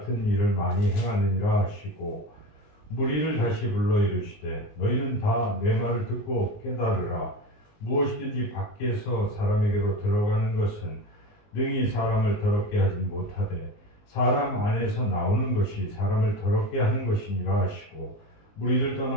일을 많이 행하느니라 하시고 무리를 다시 불러 이르시되 너희는 다 내 말을 듣고 깨달으라. 무엇이든지 밖에서 사람에게로 들어가는 것은 능히 사람을 더럽게 하지 못하되 사람 안에서 나오는 것이 사람을 더럽게 하는 것이니라 하시고 무리를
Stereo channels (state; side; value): late; right; 19 ms